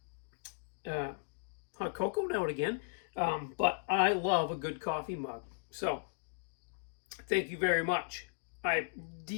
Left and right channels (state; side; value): silent; right; digital silence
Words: cocoa now and again, but I love a good coffee mug. So, thank you very much. I